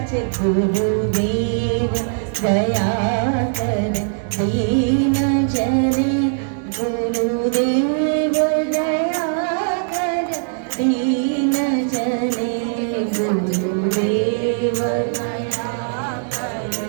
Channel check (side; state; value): left; silent; digital silence